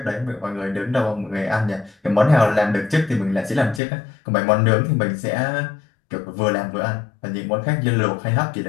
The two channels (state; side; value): drops out; right; at 3.8 s